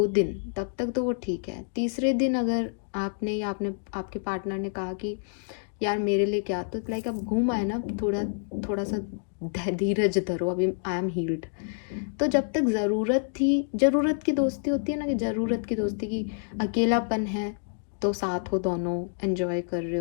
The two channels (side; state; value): right; silent; digital silence